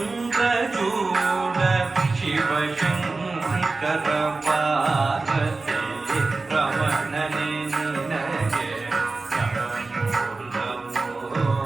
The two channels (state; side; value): quieter; left; 3.7 dB